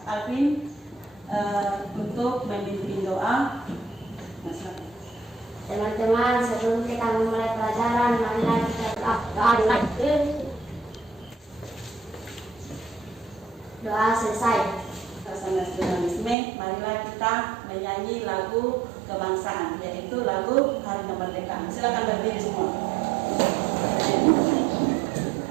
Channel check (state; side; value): drops out; left; at 16.4 s